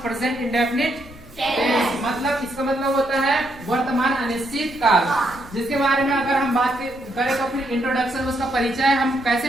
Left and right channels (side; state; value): right; noise; rumble, 25 dB below the sound